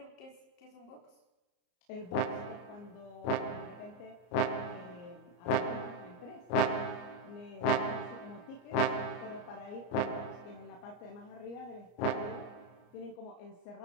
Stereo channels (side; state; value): right; late; 34 ms